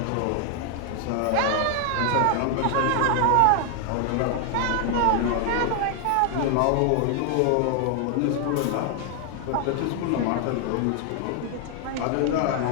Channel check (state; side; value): different; both; correlation 0.00